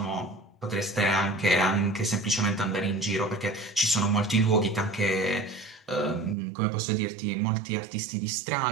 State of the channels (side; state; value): left; drops out; at 6.4 s